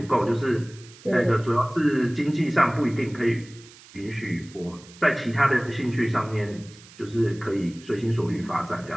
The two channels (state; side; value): noise; right; hiss, 22 dB below the sound